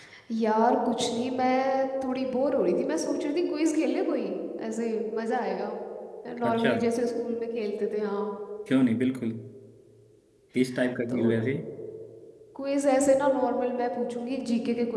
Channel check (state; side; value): identical; both; correlation 1.00